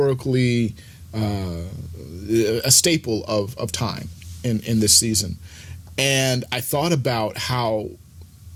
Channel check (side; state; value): both; identical; correlation 1.00